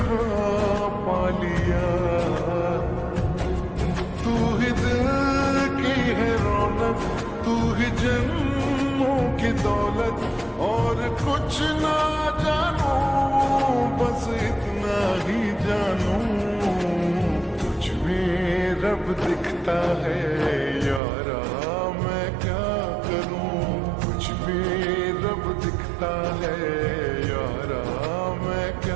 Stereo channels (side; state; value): left; drops out; at 21.0 s